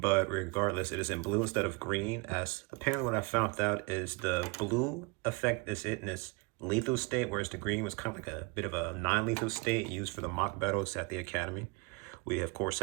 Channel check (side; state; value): left; quieter; 29.0 dB